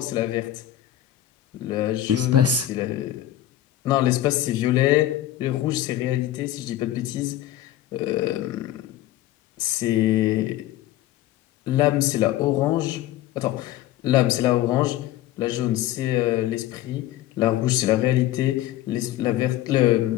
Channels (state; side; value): quieter; right; 13.4 dB